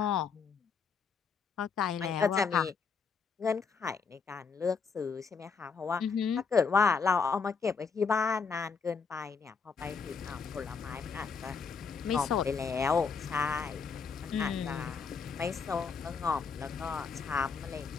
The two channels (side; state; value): right; quieter; 5.5 dB